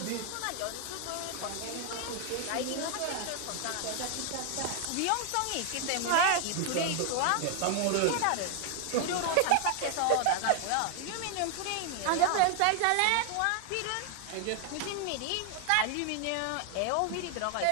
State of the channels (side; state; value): both; different; correlation 0.00